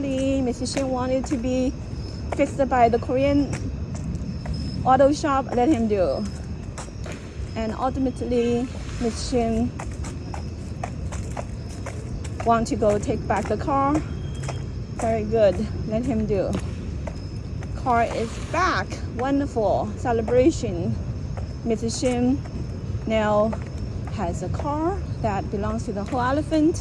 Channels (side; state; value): both; identical; correlation 1.00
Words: Mr. Shim wanted to be fixed by the Korean auto shop, let him do. And ultimately, Mr. Shim want to go take back the car. Very good, let him do. Car is back, wonderful celebration. Mr. Shim now has a car that belongs to the Whole